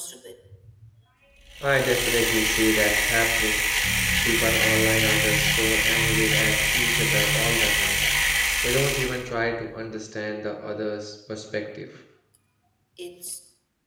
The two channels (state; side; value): identical; both; correlation 1.00